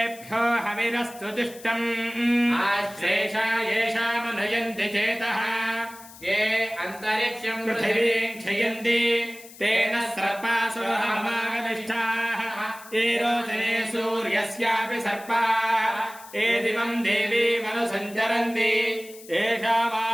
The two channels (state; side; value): noise; left; hiss, 19 dB below the sound